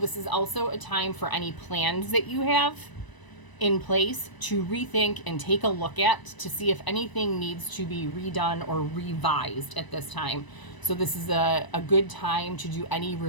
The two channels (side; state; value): right; late; 1.0 ms